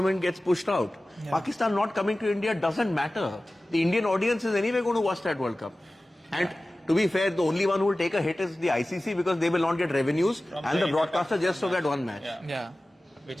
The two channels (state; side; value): normal; both; correlation 0.97